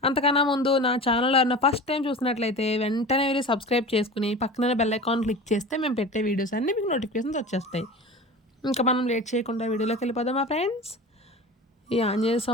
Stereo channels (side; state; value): both; normal; correlation 0.34